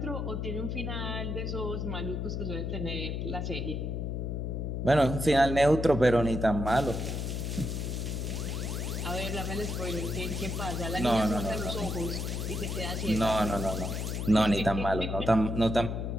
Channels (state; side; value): noise; left; hum, 2 dB below the sound